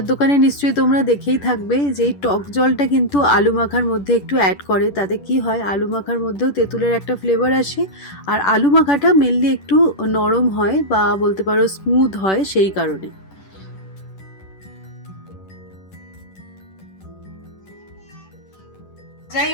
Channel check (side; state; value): right; late; 10 ms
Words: দোকানে নিশ্চয়ই তোমরা দেখেই থাকবে যে এই টক জলটা কিন্তু আলু মাখার মধ্যে একটু অ্যাড করে, তাতে কি হয় আলু মাখার মধ্যেও তেঁতুলের একটা ফ্লেভার আসে, আর আলু মাখাটা মেনলি একটু নরম হয় বা বলতে পারো স্মুথ হয় সেই কারণে। যাই